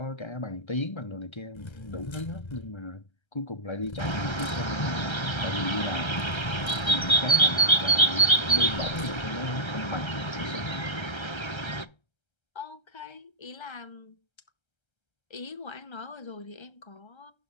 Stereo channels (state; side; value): late; right; 1.3 ms